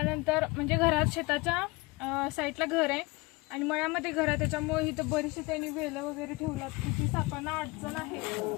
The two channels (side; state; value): right; quieter; 24.4 dB